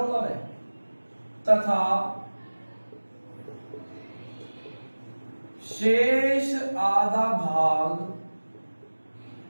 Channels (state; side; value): inverted; both; correlation -1.00